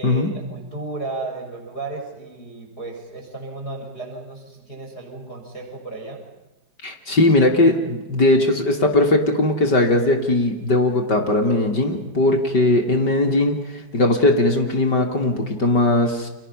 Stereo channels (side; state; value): right; late; 5.2 ms